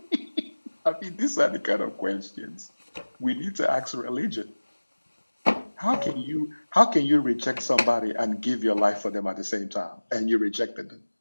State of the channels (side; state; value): both; inverted; correlation -1.00